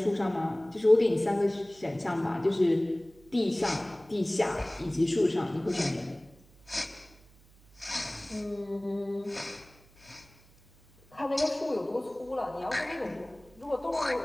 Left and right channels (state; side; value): noise; right; hum, 27 dB below the sound